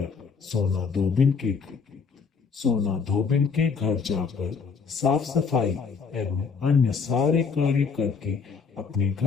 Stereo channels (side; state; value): right; quieter; 5.4 dB